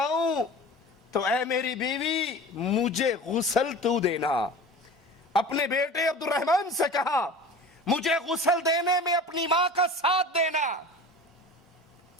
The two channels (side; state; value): both; normal; correlation 0.37